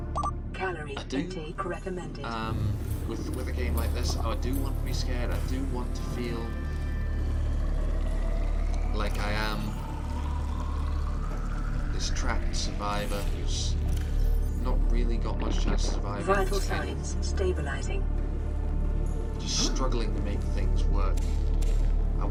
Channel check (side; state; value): both; identical; correlation 1.00